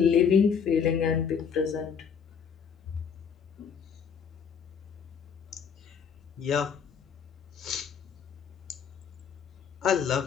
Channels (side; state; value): right; quieter; 6.9 dB